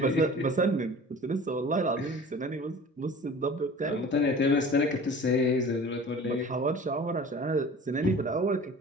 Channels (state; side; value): normal; both; correlation 0.42